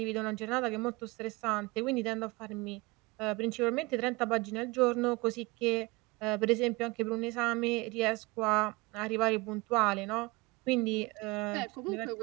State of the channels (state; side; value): quieter; left; 24.1 dB